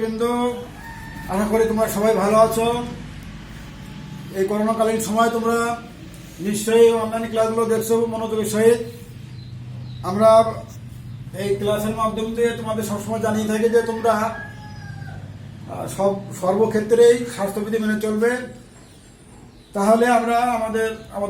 আশা করি তোমরা সবাই ভালো আছো। এই করোনাকালীন সময় তোমরা নিশ্চয়ই অনলাইন ক্লাসগুলো দেখছো মনোযোগের সহিত। আমরা এই ক্লাসের মাধ্যম দিয়ে তোমাদের সবসময় জানিয়ে থাকি যে তোমরা সর্বক্ষেত্রেই স্বাস্থ্যবিধি মেনে চলবে, তাহলে আমরা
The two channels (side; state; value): both; identical; correlation 1.00